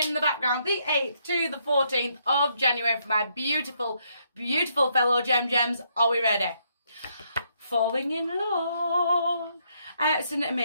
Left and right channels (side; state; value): both; inverted; correlation -0.74